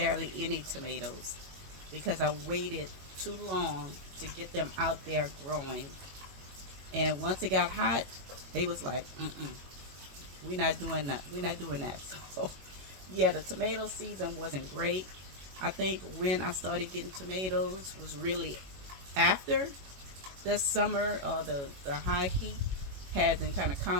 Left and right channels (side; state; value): left; late; 21 ms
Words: any tomatoes because I waited too long to get them out there growing. And once it got hot, they was like, we're not doing that. We're not doing that. So yeah, the tomato season wasn't great. I think when I started getting tomatoes was really after the summer or the high heat had been kind of